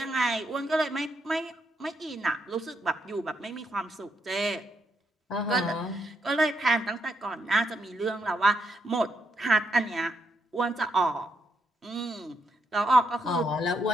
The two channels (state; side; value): normal; both; correlation 0.78